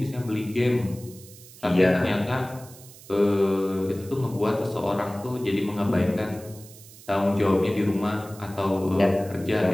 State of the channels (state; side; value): noise; right; hiss, 20 dB below the sound